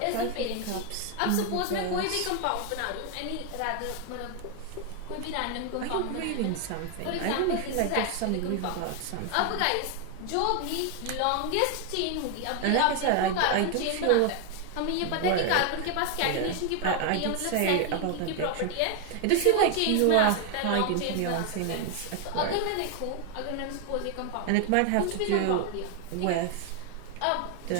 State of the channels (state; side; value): different; both; correlation 0.00